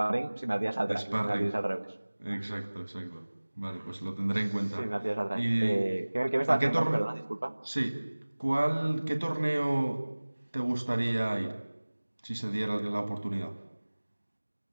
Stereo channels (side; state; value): both; inverted; correlation -1.00